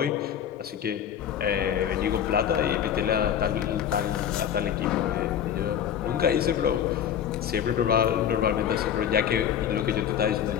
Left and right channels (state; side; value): quieter; right; 9.3 dB